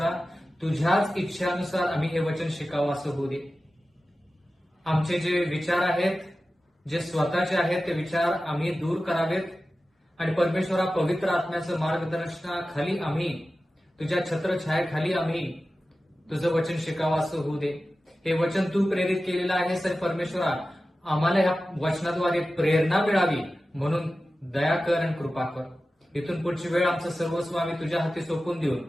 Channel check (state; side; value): normal; both; correlation 0.94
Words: तुझ्याच इच्छानुसार आम्ही हे वचन शिकावं असं होऊ दे. आमचे जे विचार आहेत, जे स्वतःचे आहेत, ते विचार आम्ही दूर करावेत आणि परमेश्वरा पवित्र आत्म्याचं मार्गदर्शनाखाली आम्ही तुझ्या छत्रछायेखाली आम्ही तुझं वचन शिकावं असं होऊ दे. हे वचन तू प्रेरित केलेलं आहे सर परमेश्वरा, आम्हाला ह्या वचनाद्वारे प्रेरणा मिळावी म्हणून दया कर आणि कृपा कर. इथून पुढची वेळ आमचं सर्वस्व आम्ही तुझ्या हाती सोपून देऊन